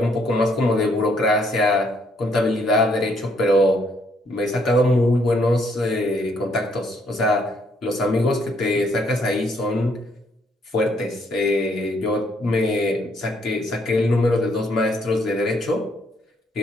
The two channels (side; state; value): both; normal; correlation 0.70